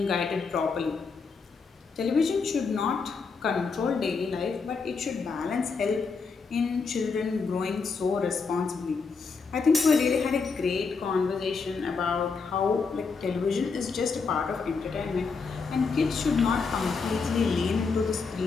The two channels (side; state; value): right; quieter; 4.9 dB